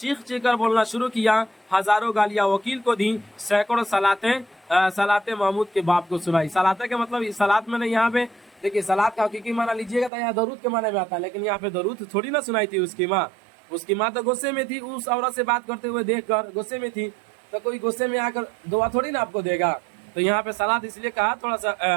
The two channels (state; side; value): drops out; left; at 10.1 s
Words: चीख कर बोलना शुरू किया। हजारों गालियां वकील को दी, सैकड़ों सलातें महमूद के बाप को सुनाई। सलाते का मतलब सलात मैंने यहाँ पे देखिए, सलात का हकीकी माना लीजिएगा तो यहाँ दरूद के माने में आता है, लेकिन यहाँ पे दरूद थोड़ी ना सुनाई थी उसकी माँ। उसकी माँ तो गुस्से में थी, उस औरत से बात करते हुए देख कर गुस्से में थी, तो कोई गुस्से में आकर दुआ थोड़ी ना आपको देगा। तो यहाँ पे सलात इसलिए कहा, थोड़ा